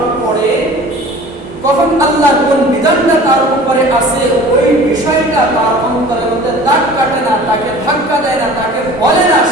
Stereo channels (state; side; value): normal; both; correlation 0.44